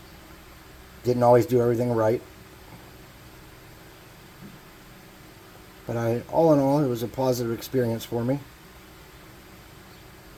Didn't always do everything right. But all in all, it was a positive experience for me.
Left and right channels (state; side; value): identical; both; correlation 1.00